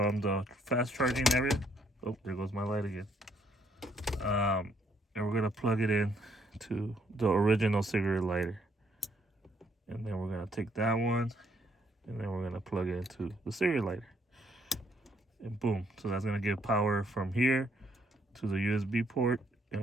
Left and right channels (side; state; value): both; normal; correlation 0.70